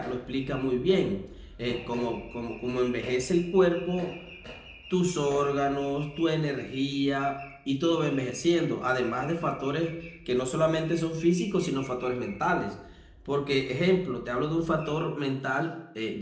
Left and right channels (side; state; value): both; identical; correlation 1.00